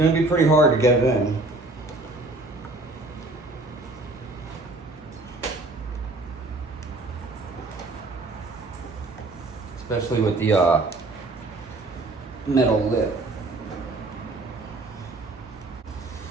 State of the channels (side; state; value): left; quieter; 3.0 dB